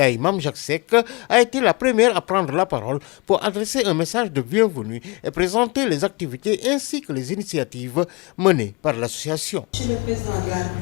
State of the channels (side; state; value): right; quieter; 27.9 dB